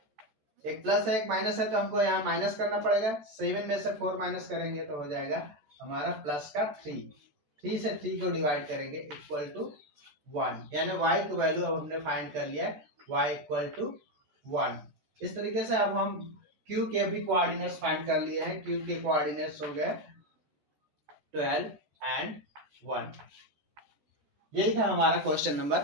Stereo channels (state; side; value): late; left; 14 ms